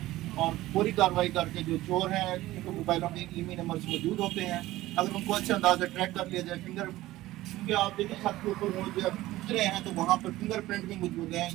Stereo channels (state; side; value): quieter; left; 16.7 dB